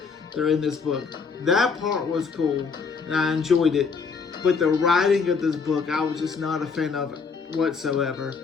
they're in this book. That part was cool, and I enjoyed it. But the writing of this book, I was just not a fan of it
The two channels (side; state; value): right; quieter; 5.3 dB